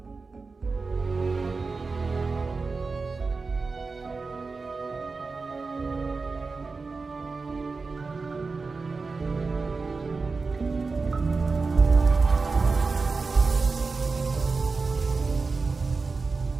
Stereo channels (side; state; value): left; quieter; 4.2 dB